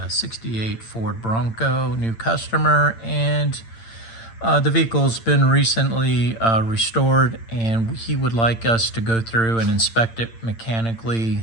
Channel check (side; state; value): right; late; 8.8 ms